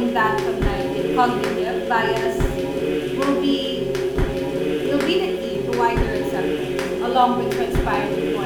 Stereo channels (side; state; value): both; identical; correlation 1.00